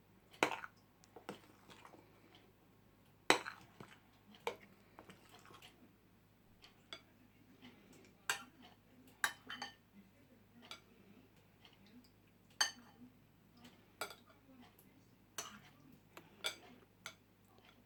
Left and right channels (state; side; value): identical; both; correlation 1.00